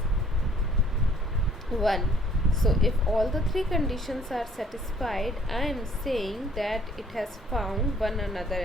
1. So if all the three conditions are satisfied, I am saying that it has found one another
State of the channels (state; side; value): normal; both; correlation 0.60